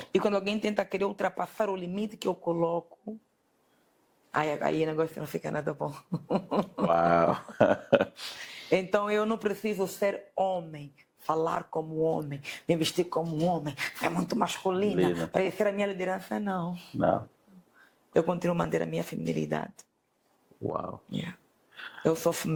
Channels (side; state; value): both; identical; correlation 1.00